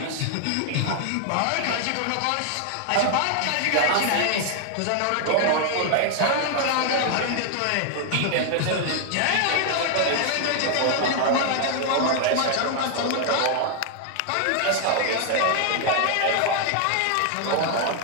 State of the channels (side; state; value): both; different; correlation 0.00